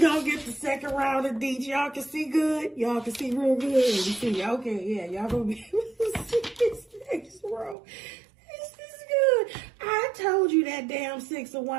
get the second round of deets. Y'all can see good? Y'all can see real good? You see? Okay, yeah, y'all gonna be able to see this next row. This is good. I told you that damn Six of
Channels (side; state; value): left; drops out; at 7.8 s